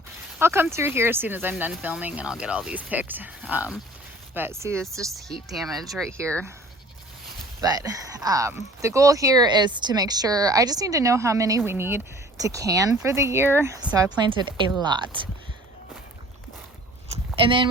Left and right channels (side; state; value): both; normal; correlation 0.48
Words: I'll come through here as soon as I'm done filming and I'll get all these picked. But see, it's just heat damage right here. But the goal here is to make sure, I just need to know how many we need to can for the year. So I planted a lot. And then